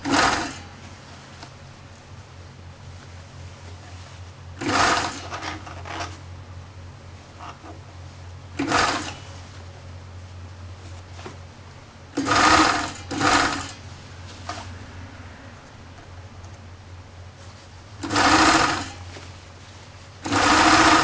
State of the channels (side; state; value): both; identical; correlation 1.00